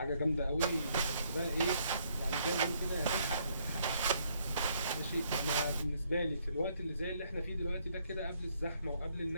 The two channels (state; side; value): inverted; both; correlation -0.70